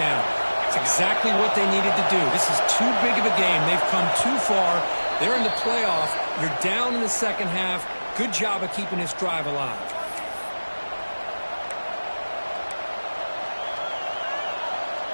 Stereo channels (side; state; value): both; inverted; correlation -1.00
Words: It's exactly what they needed to do. This is too big of a game. They've come too far. They're in the playoff. You're down in the 2nd half. Good job of keeping this drive alive.